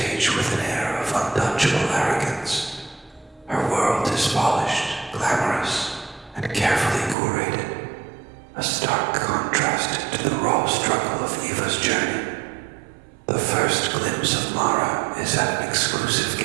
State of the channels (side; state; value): left; drops out; at 7.2 s